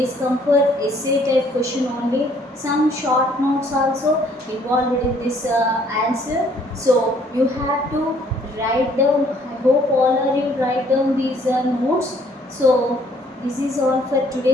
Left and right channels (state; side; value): normal; both; correlation 0.62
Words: come for essay type question only. Some short notes also involved in this answer. So you have to write down. I hope all of you write down these notes. So this is all for